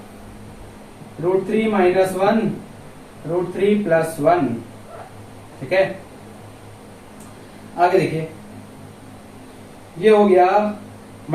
रूट 3 माइनस 1 रूट 3 प्लस 1, ठीक है। आगे देखिए, ये हो गया,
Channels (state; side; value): identical; both; correlation 1.00